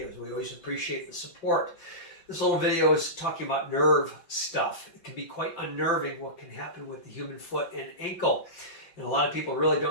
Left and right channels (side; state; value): right; late; 5.7 ms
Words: We always appreciate the support. This little video is talking about nerve stuff. It can be quite unnerving what can happen with the human foot and ankle. And a lot of people really